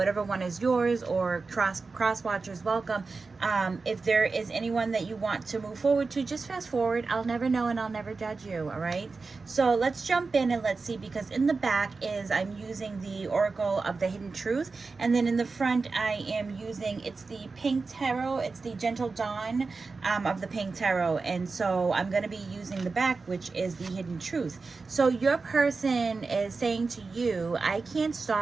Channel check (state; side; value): quieter; left; 4.2 dB